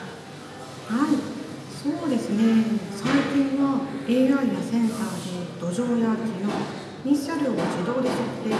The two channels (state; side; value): identical; both; correlation 1.00